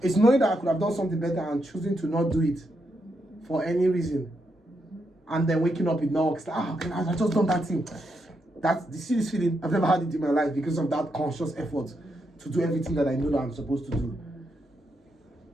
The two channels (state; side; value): normal; both; correlation 0.81